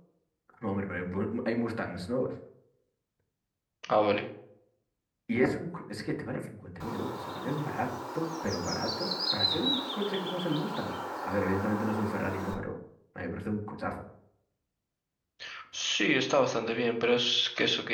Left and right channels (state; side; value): identical; both; correlation 1.00